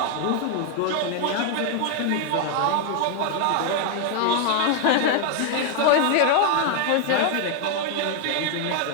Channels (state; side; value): different; both; correlation 0.00